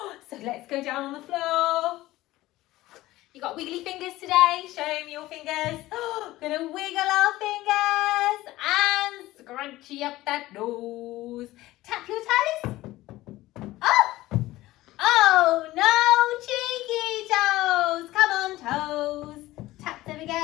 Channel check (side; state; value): right; quieter; 17.1 dB